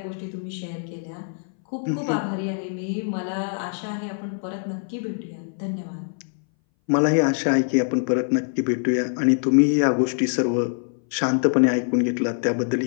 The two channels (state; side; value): silent; right; 60 dB below the other